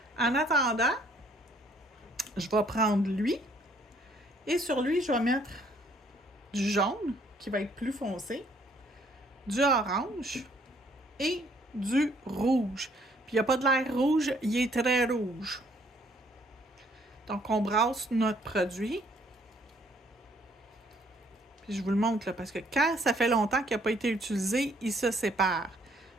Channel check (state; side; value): normal; both; correlation 0.64